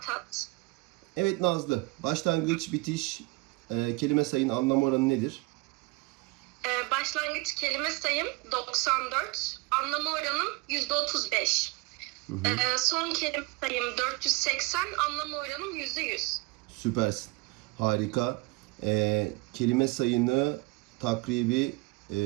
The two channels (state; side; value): quieter; left; 25.1 dB